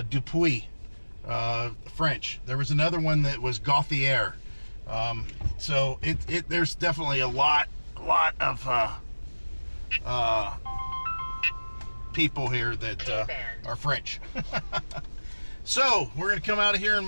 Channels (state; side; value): inverted; both; correlation -1.00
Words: Dupuis, French. There was another one that was Gauthier. So there's definitely a lot of people here that are French. So we're gonna come out of here and